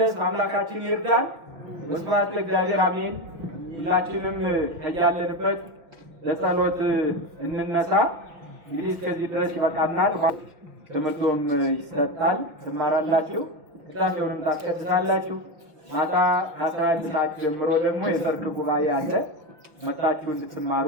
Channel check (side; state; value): left; late; 6.0 ms